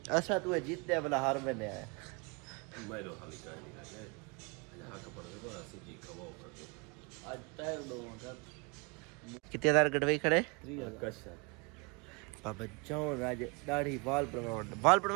ऐसा तू जीतने वाला हार में नहीं आया मैं तो खाली कह नहीं लगे यहाँ का पड़ गया सिज्जी खवाओ करके आज तय दो का कितने हजार गड़वई खड़े 3000 कशा बाबा जाओ राज दाढ़ी बाल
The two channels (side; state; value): left; quieter; 31.0 dB